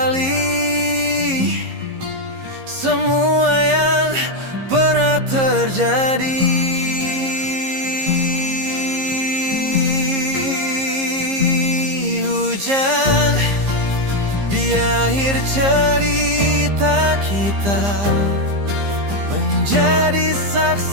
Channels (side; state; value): left; late; 15 ms